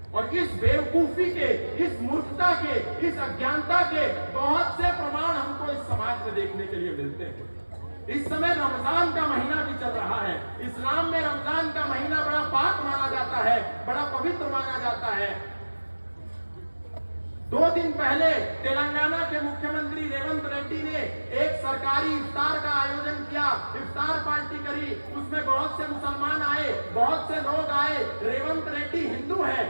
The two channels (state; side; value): inverted; both; correlation -1.00